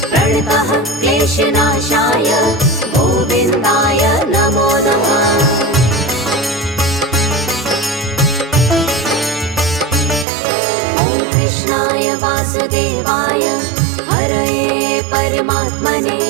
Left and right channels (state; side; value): drops out; left; at 10.2 s